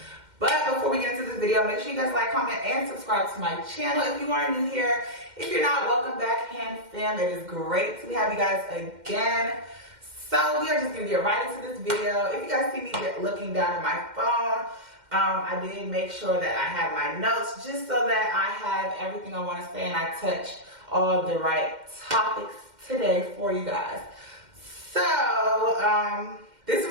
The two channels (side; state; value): left; late; 2.1 ms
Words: But before we get into this video, make sure you guys like, comment, and subscribe to my channel if you are new here. If you're not, welcome back, Hand Fam. It is great to have you guys again. So we are just going to get right into this video. If you guys see me looking down at my phone, I did make sure that I have my notes just so that I have everything I want to say and I touch all the right topics today for you guys. So, this